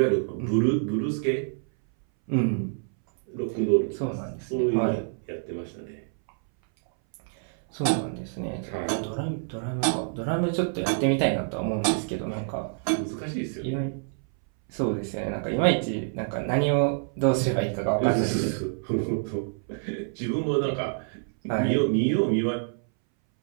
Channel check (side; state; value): left; silent; 60 dB below the other